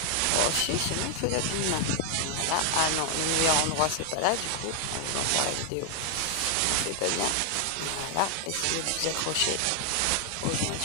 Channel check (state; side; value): different; both; correlation 0.00